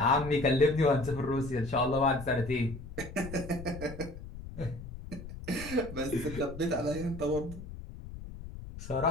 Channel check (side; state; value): left; noise; rumble, 12 dB below the sound